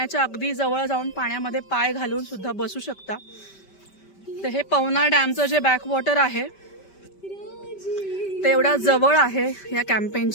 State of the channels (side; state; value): right; late; 5.2 ms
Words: अगदी जवळ जाऊन पाण्यामध्ये पाय घालून सुद्धा बसू शकता. तर हे पवना डॅमचं जे बॅकवॉटर आहे ते एवढा जवळ आहे या